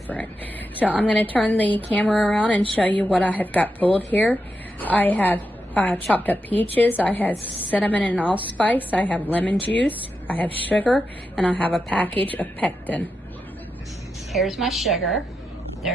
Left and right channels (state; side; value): normal; both; correlation 0.87